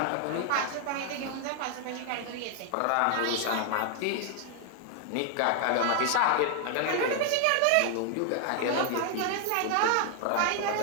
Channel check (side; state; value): both; different; correlation 0.00